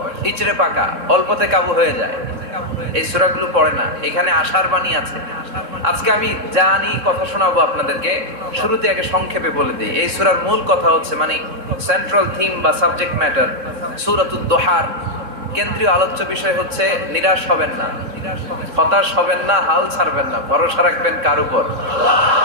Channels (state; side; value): late; left; 3.7 ms